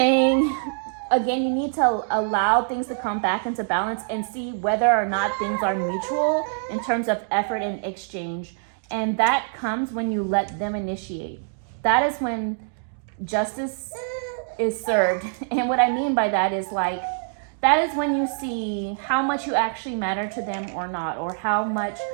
again, you need to allow things to come back into balance and see whether or not things are mutual in terms of effort and exchange. And that comes when you let them initiate. That is when justice is served. And what I mean by that is like, that is when you see how much you actually matter to them or not, or how much,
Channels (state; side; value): silent; left; digital silence